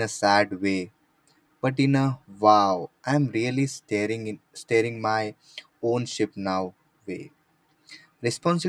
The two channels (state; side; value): identical; both; correlation 1.00